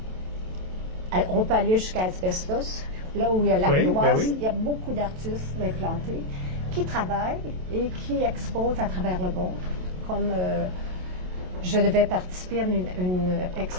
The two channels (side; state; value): left; late; 27 ms